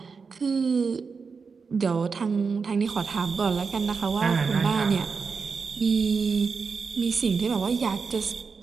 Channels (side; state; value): left; quieter; 5.2 dB